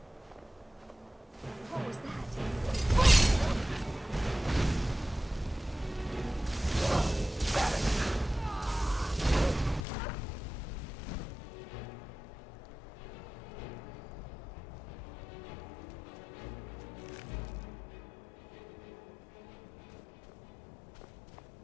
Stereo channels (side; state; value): right; drops out; at 9.9 s